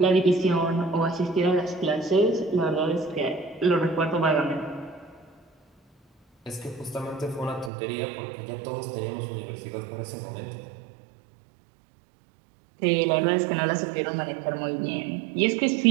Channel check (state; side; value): drops out; left; at 7.7 s